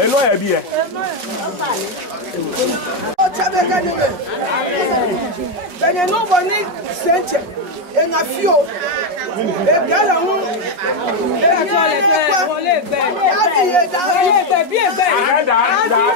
Abby. Oh, Chabeka Neme. Amen. Then you know what needs Saint and a few. A gallon.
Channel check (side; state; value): left; late; 5.6 ms